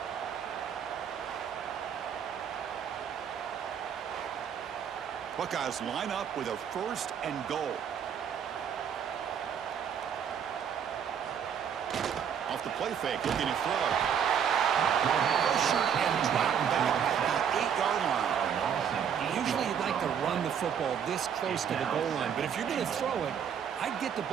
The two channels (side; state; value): left; quieter; 8.0 dB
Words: Buckeyes line up with a first and goal. Off the play fake, looking to throw. Pressure and drop back at the 8-yard line. Usually you'd like to run the football this close to the goal line, but if you're going to throw it, I'd get the